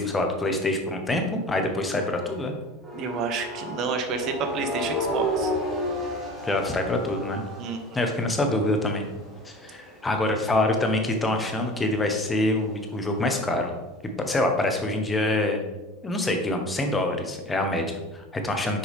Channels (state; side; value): normal; both; correlation 0.39